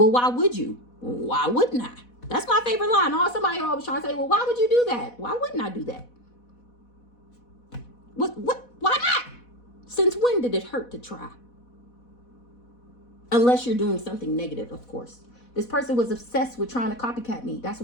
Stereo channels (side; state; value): right; late; 4.1 ms